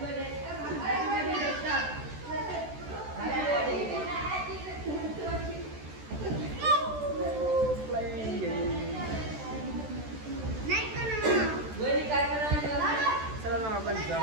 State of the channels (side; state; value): left; late; 14 ms